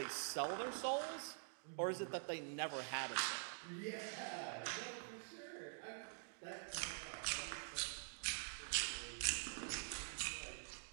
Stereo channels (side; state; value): left; silent; digital silence